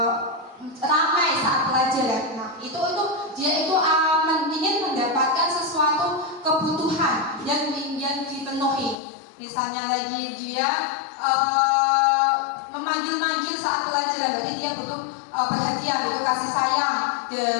ramai saat pelajaran. Nah, itu dia itu ingin mendapatkan sesuatu kebutuhan yang dipenuhi. Misalnya lagi dia memanggil-manggil saat pelajaran, berarti dia butuh perhatian, butuh kasih sayang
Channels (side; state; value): right; drops out; at 9.0 s